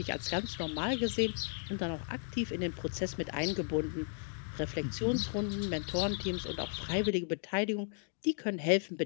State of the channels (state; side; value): silent; right; 54 dB below the other